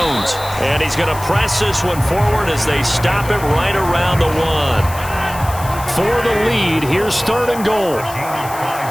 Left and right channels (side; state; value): left; noise; hiss, 14 dB below the sound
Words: And he's going to press this one forward as they stop it right around the 1. For the lead, here's 3rd and goal.